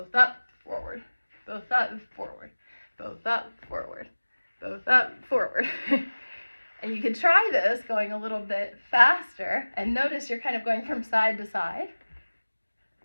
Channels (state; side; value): inverted; both; correlation -1.00